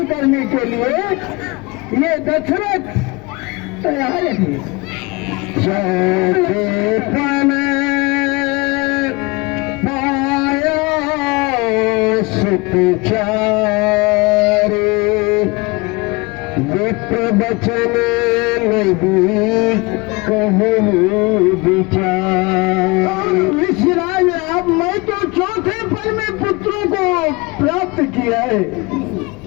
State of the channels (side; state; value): right; quieter; 25.6 dB